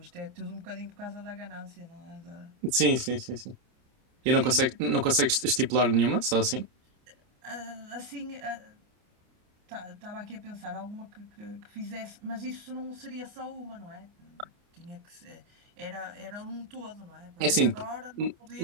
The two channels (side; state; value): left; late; 29 ms